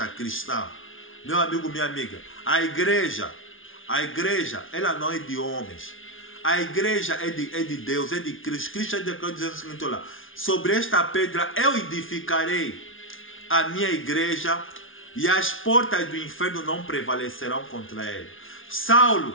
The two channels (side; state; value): right; late; 0.58 ms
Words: cristã. Meu amigo, minha amiga, a igreja, ela não é de homens. A igreja é de Deus, é de Cristo. Cristo declarou dizendo o seguinte: olha, sobre esta pedra eu edificarei a minha igreja e as portas do inferno não prevalecerão contra ele.